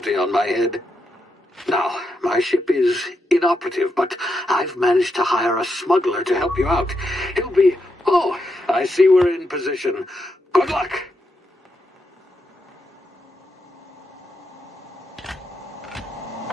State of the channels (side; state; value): both; normal; correlation 0.83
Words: on my head. Now, my ship is inoperative, but I've managed to hire a smuggler to help you out. He'll be... Oh, I see we're in position. Good luck!